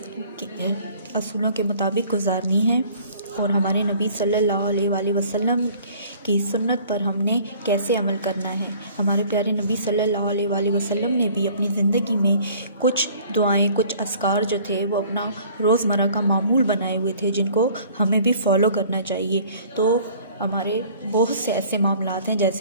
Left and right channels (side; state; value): both; inverted; correlation -0.52